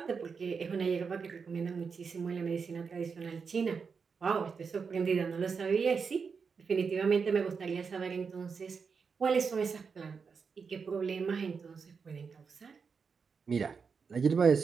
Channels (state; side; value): quieter; left; 5.6 dB